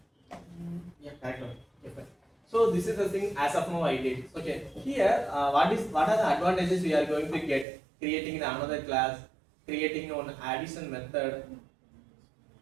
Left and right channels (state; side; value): drops out; left; at 7.7 s